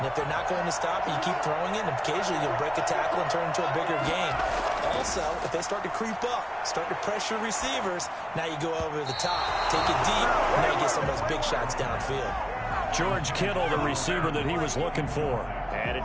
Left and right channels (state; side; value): identical; both; correlation 1.00